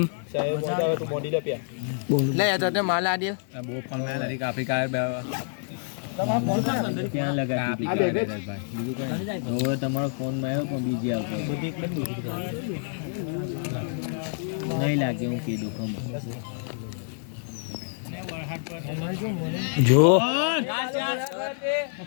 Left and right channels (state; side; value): silent; right; 60 dB below the other